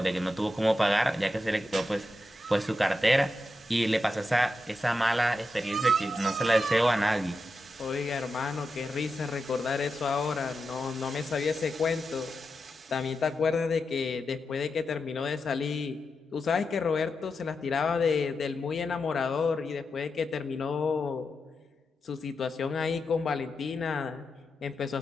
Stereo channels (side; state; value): both; normal; correlation 0.88